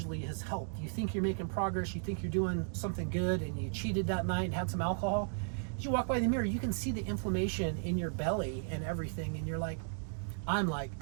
has helped. You think you're making progress, you think you're doing something good, and you cheated that night and had some alcohol. As you walk by the mirror, you can see the inflammation in your belly and everything, and you're like,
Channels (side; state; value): left; silent; digital silence